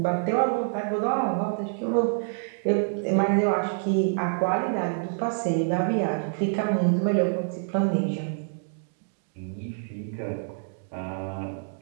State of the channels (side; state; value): left; silent; digital silence